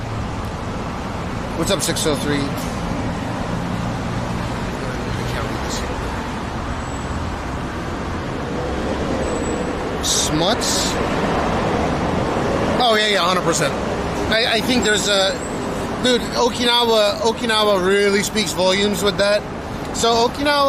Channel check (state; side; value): identical; both; correlation 1.00